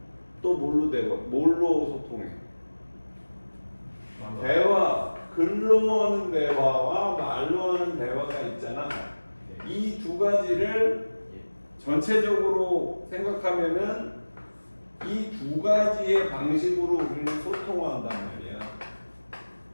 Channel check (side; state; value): both; inverted; correlation -1.00